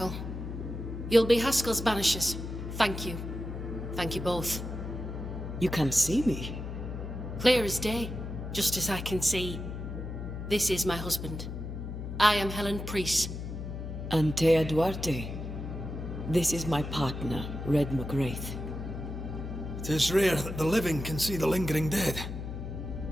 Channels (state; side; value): noise; left; hum, 7 dB below the sound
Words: You'll be Haskell's Banishers. Thank you. Thank you both. You can see me. Clear as day, just as I can see. This is my husband. I am Helen Priest. Anteya Duarte. This is my partner, Red McGrath. It is rare that the living can see the lingering dead.